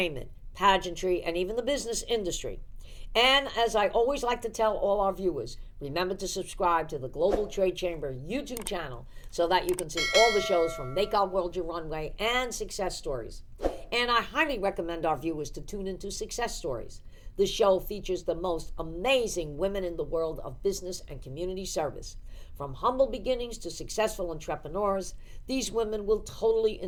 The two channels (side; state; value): both; identical; correlation 1.00